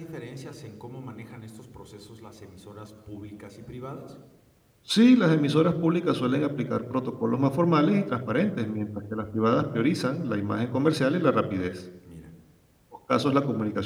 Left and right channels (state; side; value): identical; both; correlation 1.00